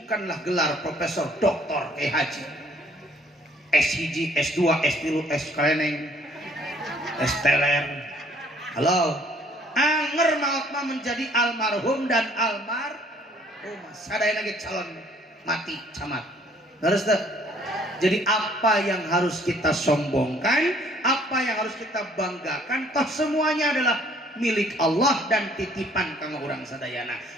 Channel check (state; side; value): normal; both; correlation 0.60